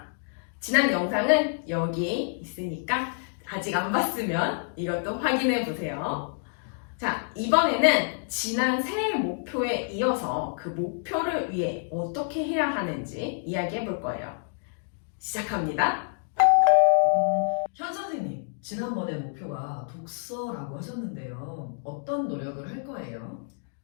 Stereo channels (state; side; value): silent; right; digital silence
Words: 지난 영상은 여기 있으니까 아직 안 봤으면 이것도 확인해 보세요. 자, 이번에는 지난 새해 목표에 이어서 그 목표를 위해 어떻게 해야 하는지 이야기해 볼 거예요. 시작합니다. 현 선생님, 지난번에 목표가 독서라고 하셨는데요. 어떤 노력을 할 거예요?